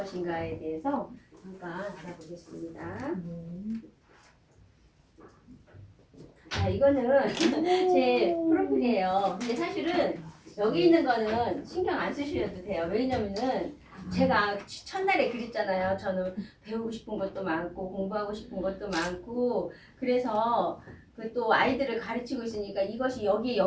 대해서 잠깐 알아보겠습니다. 자, 이거는 제 프로필이에요. 근데 사실은 여기 있는 거는 신경 안 쓰셔도 돼요. 왜냐면은 제가 첫날에 그랬잖아요. 저는 배우고 싶은 것도 많고 공부하고 싶은 것도 많고 그래서 그 또 아이들을 가르치고 있으니까 이것이 여기에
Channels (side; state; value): both; identical; correlation 1.00